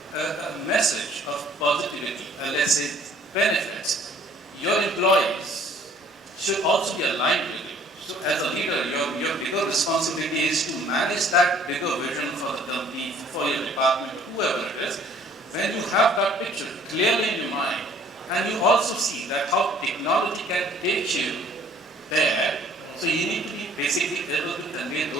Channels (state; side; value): normal; both; correlation 0.56